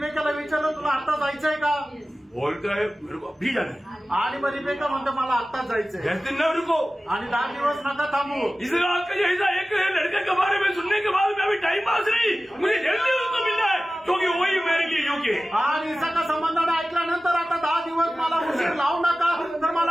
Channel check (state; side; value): normal; both; correlation 0.96